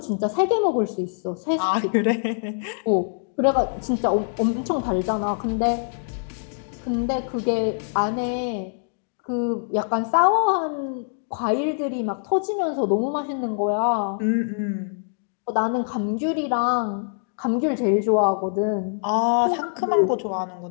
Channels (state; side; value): silent; right; digital silence